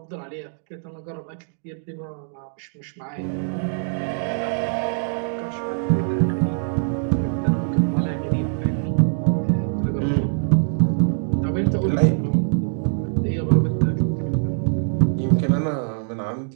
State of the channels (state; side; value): silent; left; digital silence